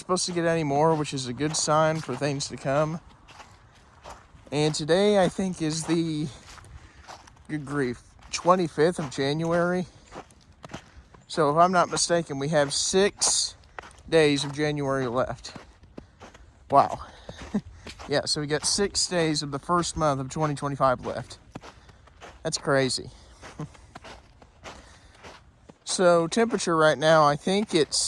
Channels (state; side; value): identical; both; correlation 1.00